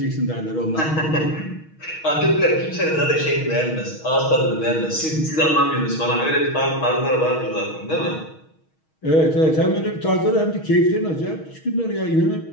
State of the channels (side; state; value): right; late; 6.3 ms